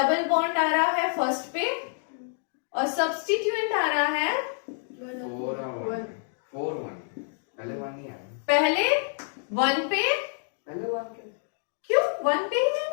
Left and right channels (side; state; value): right; silent; digital silence